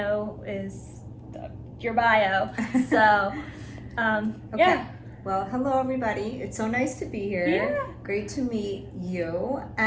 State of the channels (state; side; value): identical; both; correlation 1.00